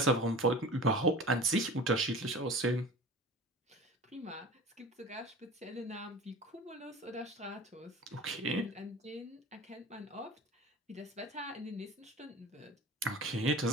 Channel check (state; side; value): normal; both; correlation 0.37